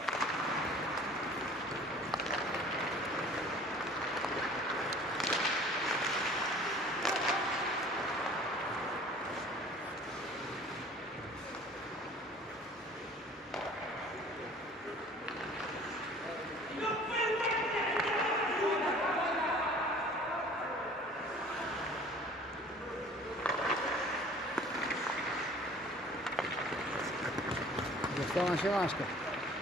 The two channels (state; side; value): normal; both; correlation 0.48